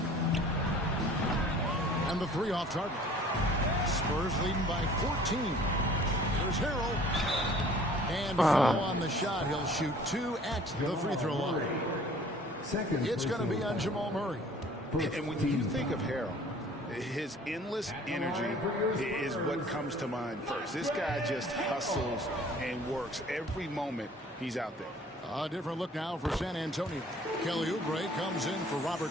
And the three off target. Spurs leading by 14. There's Harrell. And foul on the shot. He'll shoot 2 at the free throw line. It's going to be on Jamal Murray. And when you think of Harrell, his endless energy is what comes to mind first. This guy just hustles and works every moment he's out there. A different look now for San Antonio. Kelly Oubre comes in for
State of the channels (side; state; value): both; normal; correlation 0.51